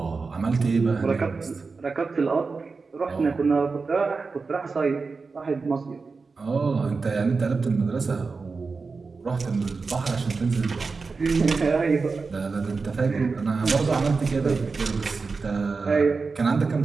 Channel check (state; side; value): quieter; left; 4.4 dB